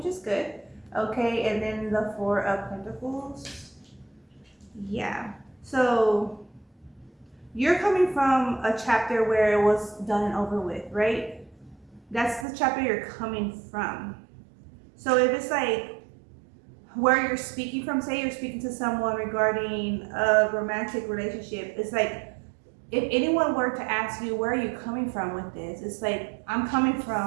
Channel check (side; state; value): left; drops out; at 12.5 s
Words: is good. Okay, and then the 4 of Pentacles. Yeah. So you're coming from a chapter where it was done and over with, right? That's the chapter you're coming from. So if it's like where you're speaking from, say you're speaking to someone regarding a romantic relationship, it's like, if anyone were to ask you, where are you coming from with this? It's like, I'm coming